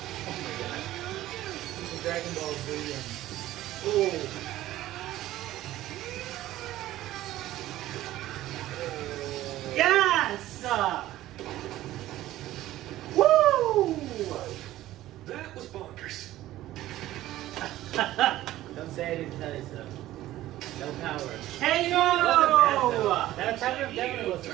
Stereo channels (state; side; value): quieter; left; 14.9 dB